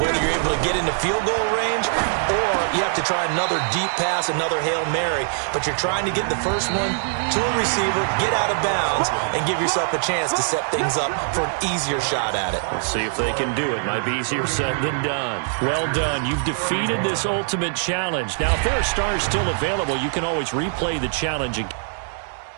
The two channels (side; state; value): left; silent; digital silence